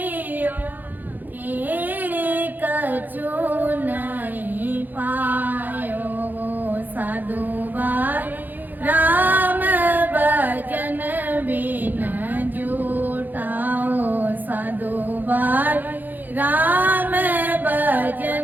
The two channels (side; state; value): left; late; 0.086 ms